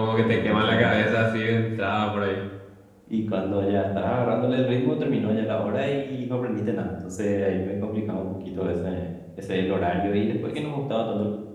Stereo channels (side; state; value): both; identical; correlation 1.00